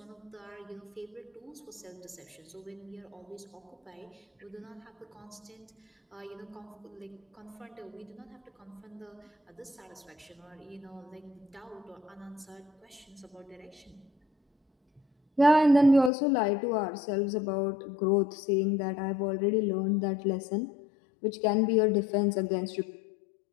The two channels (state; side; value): drops out; right; at 16.1 s